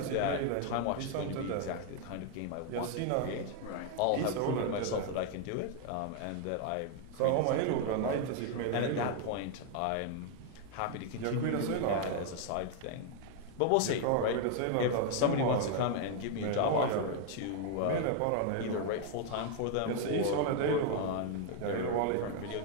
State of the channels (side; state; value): both; different; correlation 0.00